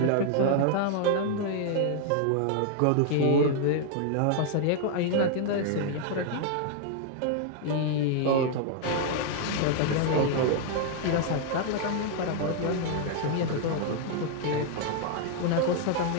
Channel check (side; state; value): both; different; correlation 0.00